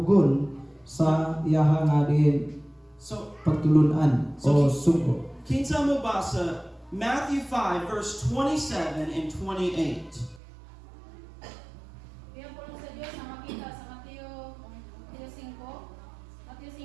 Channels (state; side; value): drops out; left; at 10.4 s